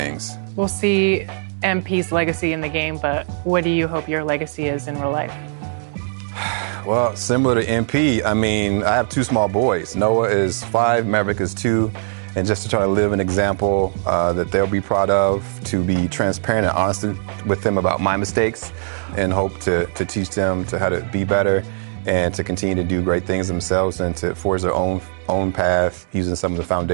We'll see MP's legacy in the game, but what do you hope your legacy is in real life? Well, similar to MP, I mean, I have two small boys. Noah is 5, Maverick is 2, and just to try to live an example that they'll be proud of, to be transparent and honest with them about my mistakes, and hope to teach them to how to be better and to continue to do great things themselves and to forge their own path using some of the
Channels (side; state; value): left; silent; digital silence